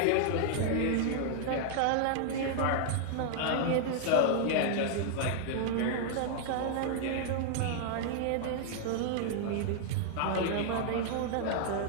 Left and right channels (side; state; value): both; different; correlation -0.01